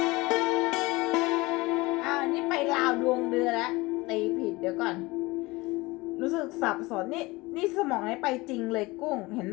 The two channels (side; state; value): right; quieter; 22.2 dB